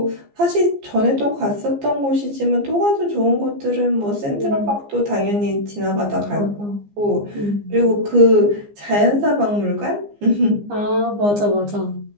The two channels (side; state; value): left; late; 15 ms